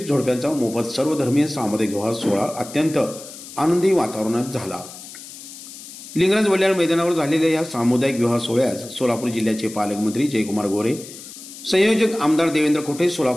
जोडप्यांचा मोफत सर्वधर्मीय सामुदायिक विवाह सोहळा अत्यंत आनंदी वातावरणात झाला। लिंगराज वल्याळ मैदानावर झालेल्या या सामुदायिक विवाह सोहळ्यास सोलापूर जिल्ह्याचे पालकमंत्री जयकुमार गोरे, संयोजक आमदार देवेंद्र कोठे,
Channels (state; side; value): noise; left; hiss, 15 dB below the sound